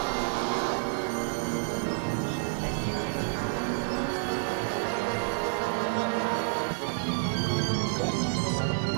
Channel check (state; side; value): silent; left; digital silence